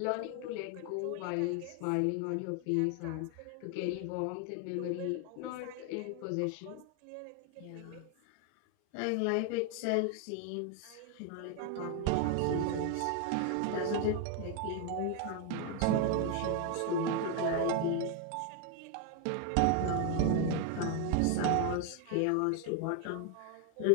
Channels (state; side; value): different; both; correlation 0.01